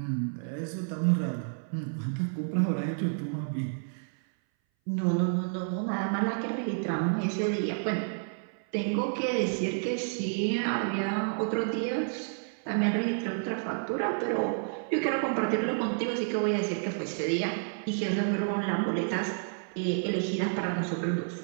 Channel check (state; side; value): silent; left; 58 dB below the other